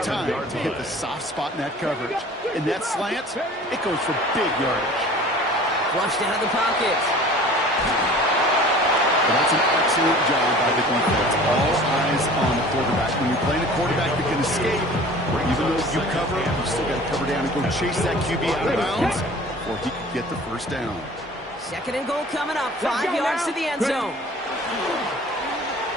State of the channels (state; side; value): normal; both; correlation 0.45